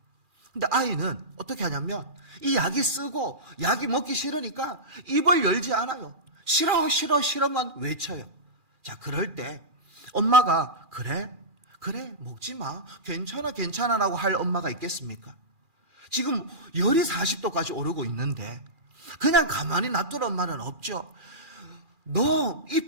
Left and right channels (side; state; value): left; late; 2.4 ms